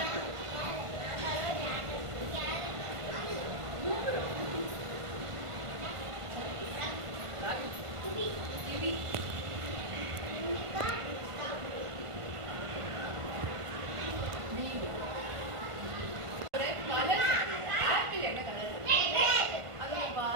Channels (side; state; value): left; late; 1.5 ms